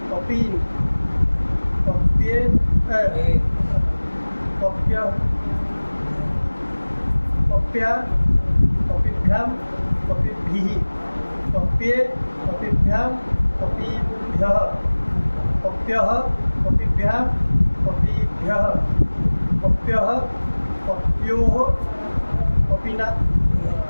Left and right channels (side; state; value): both; inverted; correlation -1.00